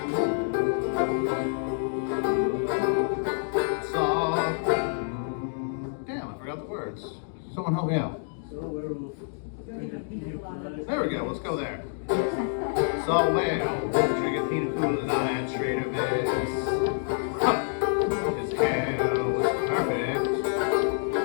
Saw. Damn, I forgot the words. Someone help me out. There we go, let's go there. Saw a werewolf drinking pina colada at Trader Vic's. Huh. His hair was perfect.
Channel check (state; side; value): silent; right; digital silence